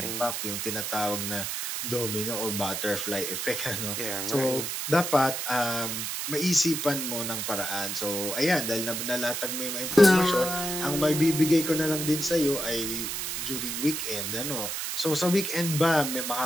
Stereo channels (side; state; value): right; noise; hiss, 3 dB below the sound